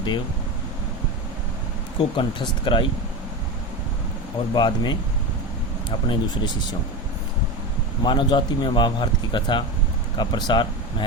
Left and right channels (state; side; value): normal; both; correlation 0.22